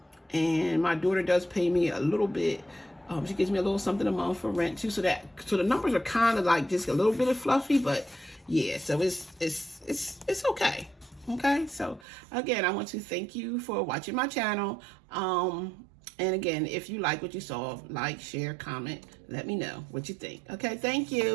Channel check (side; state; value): left; drops out; at 12.1 s